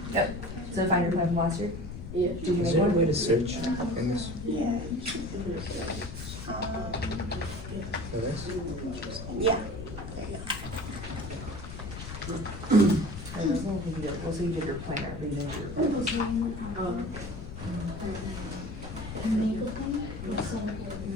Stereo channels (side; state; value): left; noise; rumble, 9 dB below the sound